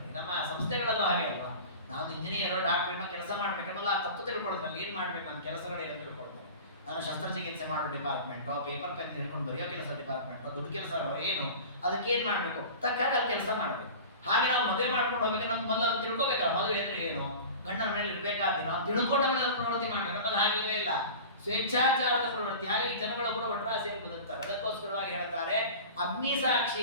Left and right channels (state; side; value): inverted; both; correlation -0.36